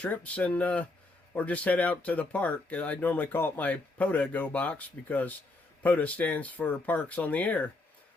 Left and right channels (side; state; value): right; quieter; 3.1 dB